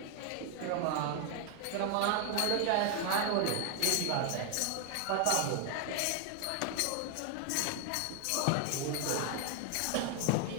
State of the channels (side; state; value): both; different; correlation 0.00